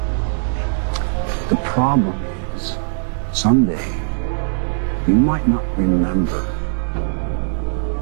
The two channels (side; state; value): left; silent; digital silence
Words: the problem is, someday, you might not remember